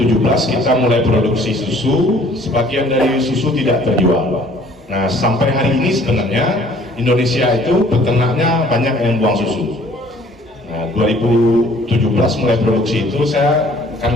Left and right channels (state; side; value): normal; both; correlation 0.56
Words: kita mulai produksi susu, sebagian dari susu tidak terjual. Nah, sampai hari ini sebenarnya Indonesia itu peternaknya banyak yang buang susu. Nah, 2017 mulai produksi itu